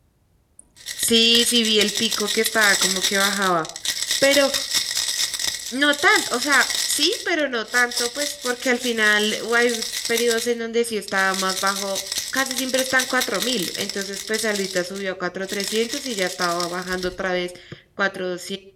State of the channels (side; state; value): both; identical; correlation 1.00